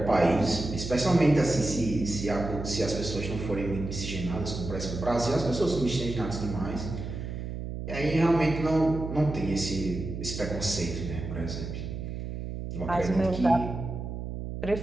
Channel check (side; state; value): right; noise; hum, 6 dB below the sound